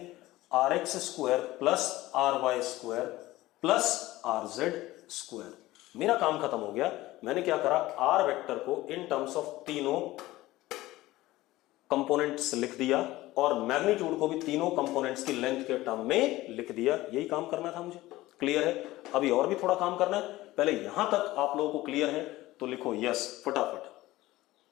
R x square plus R Y square plus are Z square. मेरा काम खत्म हो गया। मैंने क्या करा, आर वेक्टर को इन टर्म्स ऑफ तीनों कंपोनेंट्स लिख दिया और मैग्नीट्यूड को भी तीनों कंपोनेंट्स की लेंथ के टर्म में लिख दिया। यही काम करना था मुझे। क्लियर है? अभी और भी थोड़ा काम करना है। पहले यहां तक आप लोगों को क्लियर है तो लिखो यस फटाफट।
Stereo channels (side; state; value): right; quieter; 17.5 dB